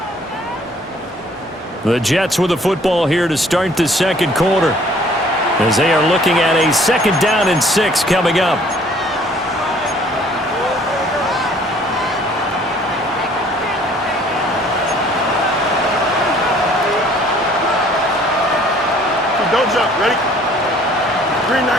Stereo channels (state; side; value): normal; both; correlation 0.57